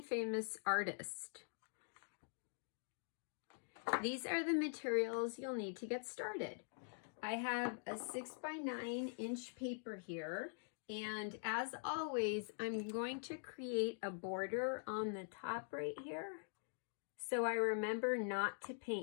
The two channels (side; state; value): right; silent; digital silence